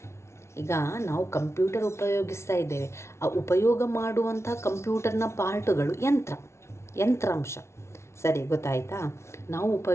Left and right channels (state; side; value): late; right; 0.13 ms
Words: ಈಗ ನಾವು ಕಂಪ್ಯೂಟರ್ ಉಪಯೋಗಿಸ್ತಾ ಇದ್ದೇವೆ, ಆ ಉಪಯೋಗ ಮಾಡುವಂಥ ಕಂಪ್ಯೂಟರ್ನ ಪಾರ್ಟುಗಳು ಯಂತ್ರಾಂಶ. ಸರಿ, ಗೊತ್ತಾಯಿತಾ? ನಾವು